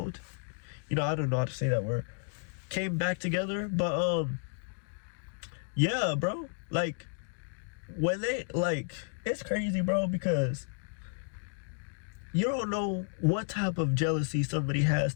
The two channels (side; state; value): right; silent; digital silence